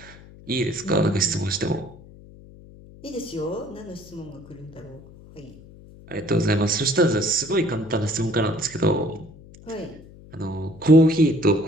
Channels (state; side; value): noise; left; hum, 21 dB below the sound